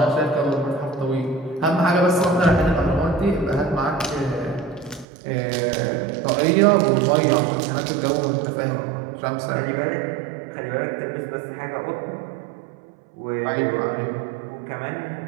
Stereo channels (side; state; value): left; drops out; at 5.1 s